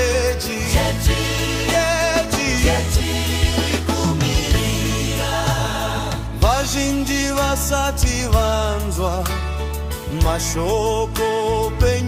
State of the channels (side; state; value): both; identical; correlation 1.00